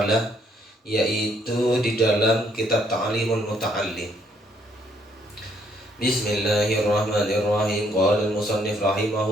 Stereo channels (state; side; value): normal; both; correlation 0.69